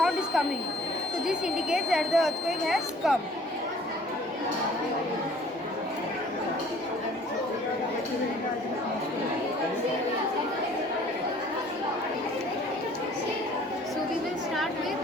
is coming. So this indicates that the earthquake has come. So we will start with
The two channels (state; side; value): normal; both; correlation 0.54